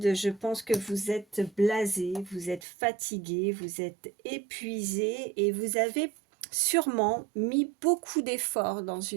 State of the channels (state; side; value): drops out; left; at 2.6 s